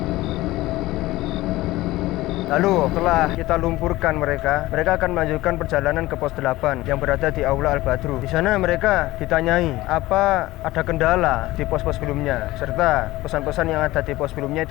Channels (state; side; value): quieter; right; 18.0 dB